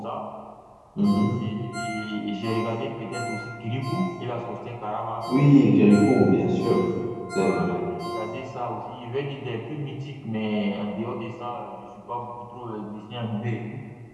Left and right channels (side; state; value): both; identical; correlation 1.00